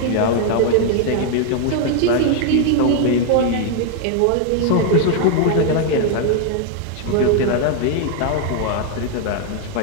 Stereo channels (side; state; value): both; different; correlation 0.00